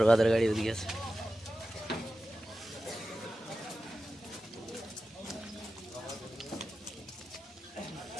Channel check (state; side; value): normal; both; correlation 0.94